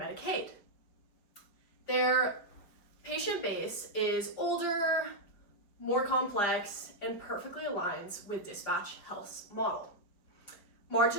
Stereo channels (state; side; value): late; right; 5.0 ms